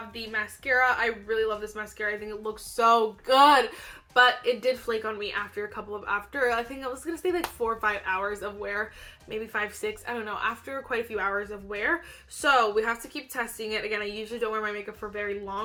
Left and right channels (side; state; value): both; identical; correlation 1.00